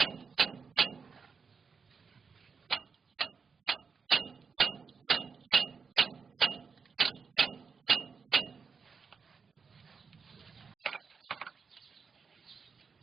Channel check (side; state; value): left; quieter; 5.5 dB